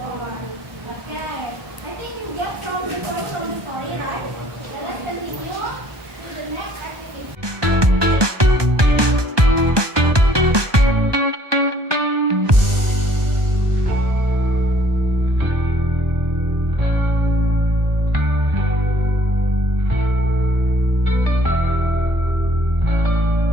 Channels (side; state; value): left; late; 1.2 ms